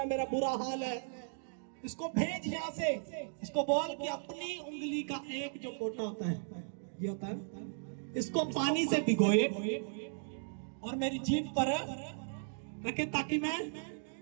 है, मेरा बुरा हाल है, इसको भेज यहाँ से, इसको बोल कि अपनी उंगली का एक जो पोटा होता है, ये होता है, इसको पानी से भिगोए और मेरी जीभ पर रखे ताकि मैं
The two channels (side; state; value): left; silent; digital silence